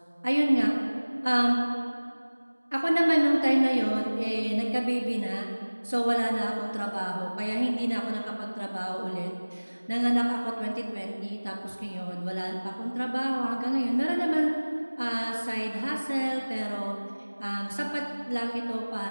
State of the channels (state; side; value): inverted; both; correlation -1.00